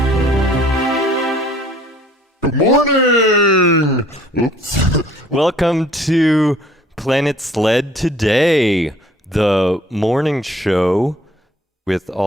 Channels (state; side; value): normal; both; correlation 0.56